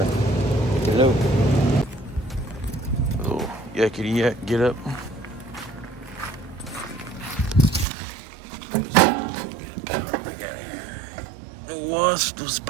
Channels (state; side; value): drops out; left; at 7.9 s